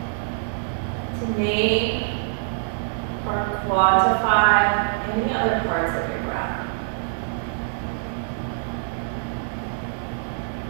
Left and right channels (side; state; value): left; silent; 62 dB below the other